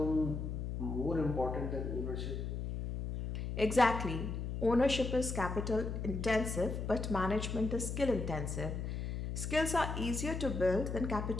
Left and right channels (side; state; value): left; noise; hum, 4 dB below the sound